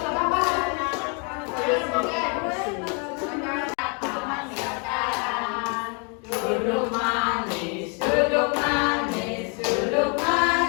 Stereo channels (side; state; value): right; quieter; 36.0 dB